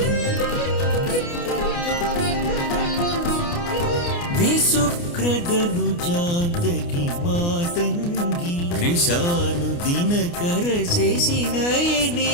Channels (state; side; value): late; right; 29 ms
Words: विसुक्रदनुजान्तकी मातंगी कृशानुदिनकर